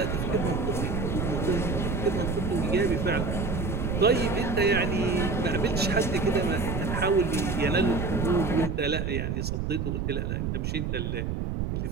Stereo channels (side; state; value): right; noise; rumble, 1 dB below the sound